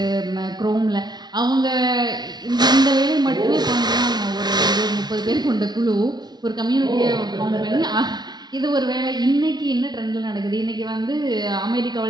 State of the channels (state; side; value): late; left; 0.20 ms